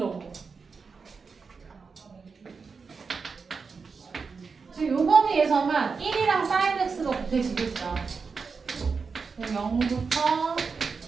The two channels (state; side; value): quieter; left; 5.1 dB